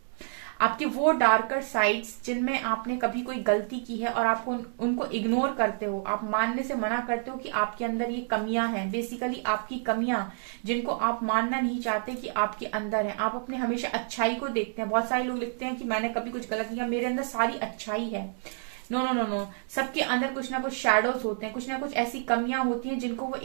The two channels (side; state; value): left; silent; digital silence